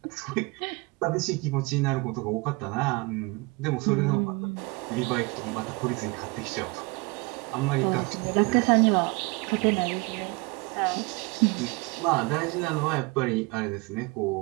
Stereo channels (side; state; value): left; quieter; 26.6 dB